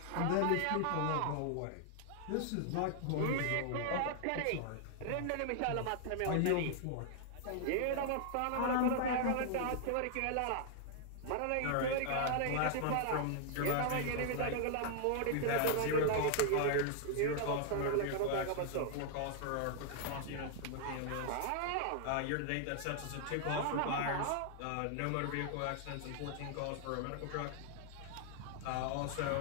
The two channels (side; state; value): both; different; correlation 0.00